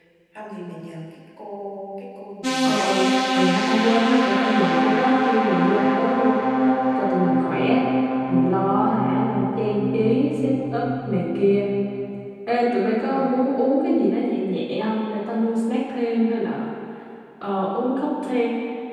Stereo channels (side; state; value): both; identical; correlation 1.00